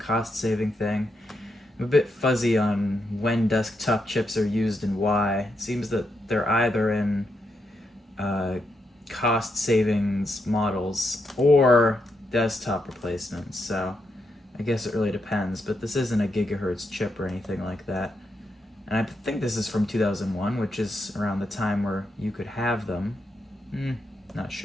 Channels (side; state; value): both; normal; correlation 0.82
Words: thing. I'm a bit fuzzy on when desktop chips are used and why. It seems that they're either in cost savings models or desktop replacements, so I guess it really depends, but this isn't a gigahertz chip or anything like that. And I think this is from 2001, which is around the time where you could have them. Not